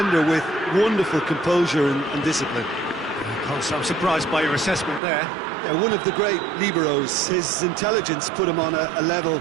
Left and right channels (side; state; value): left; drops out; at 5.0 s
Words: with wonderful composure and discipline. I'm surprised by your assessment there. Yeah, one of the great liberos. His intelligence put him on a level